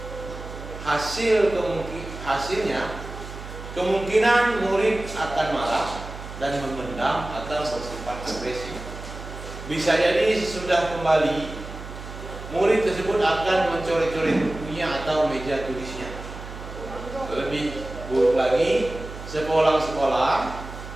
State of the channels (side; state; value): right; noise; hum, 11 dB below the sound